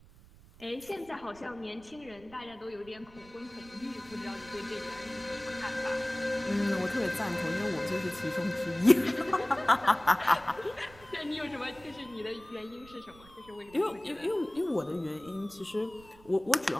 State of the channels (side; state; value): right; noise; rumble, 23 dB below the sound